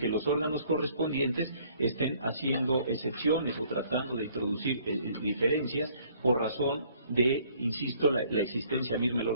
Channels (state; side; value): inverted; both; correlation -0.60